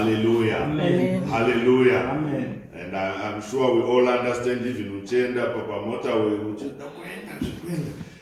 Amen. Hallelujah. Amen. And I'm sure we all understand, even uchenda papa motorway uchenda kuenda.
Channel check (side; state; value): both; identical; correlation 1.00